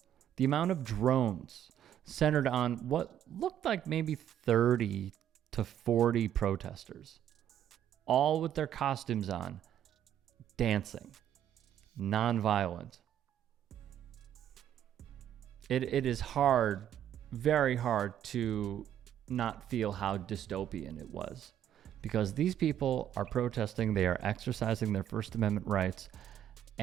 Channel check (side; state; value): left; quieter; 10.6 dB